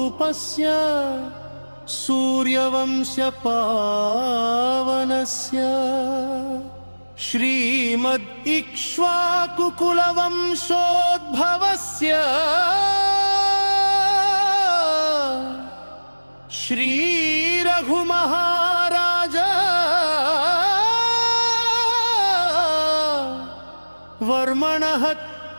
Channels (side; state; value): both; inverted; correlation -1.00